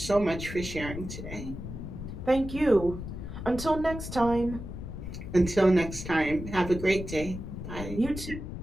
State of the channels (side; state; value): left; noise; rumble, 8 dB below the sound